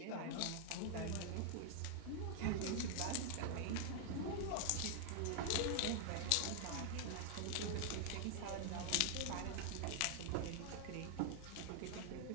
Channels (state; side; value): different; both; correlation 0.00